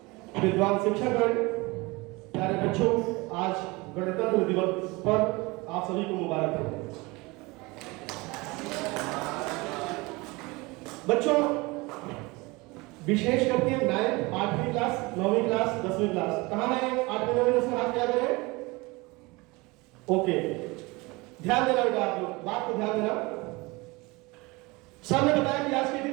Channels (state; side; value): quieter; left; 24.1 dB